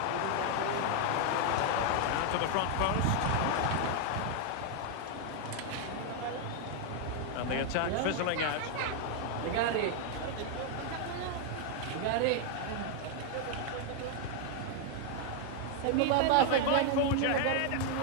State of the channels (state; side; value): different; both; correlation 0.00